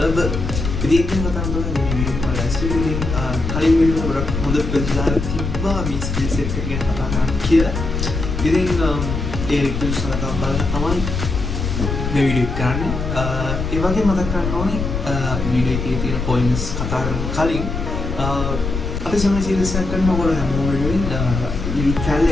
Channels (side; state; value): left; noise; rumble, 4 dB below the sound